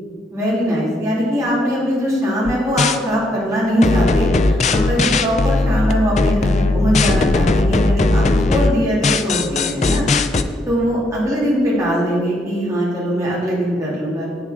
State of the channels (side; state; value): both; normal; correlation 0.75